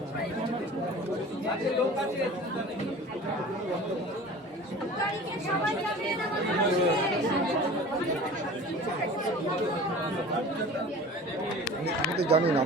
আমি তো জানি না,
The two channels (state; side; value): normal; both; correlation 0.40